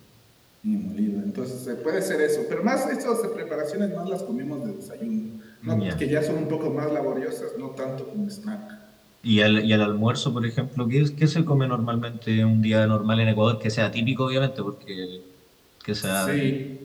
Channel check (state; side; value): identical; both; correlation 1.00